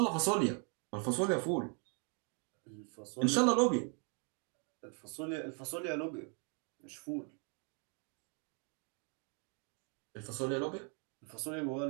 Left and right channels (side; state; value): left; quieter; 39.4 dB